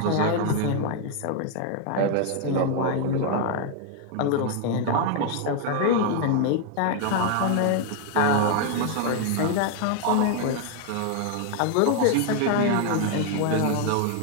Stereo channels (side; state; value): both; different; correlation 0.00